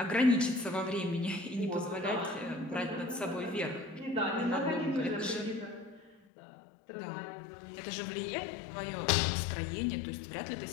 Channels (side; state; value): right; drops out; at 6.2 s